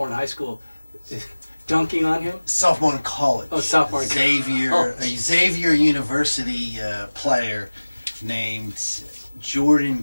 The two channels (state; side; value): inverted; both; correlation -1.00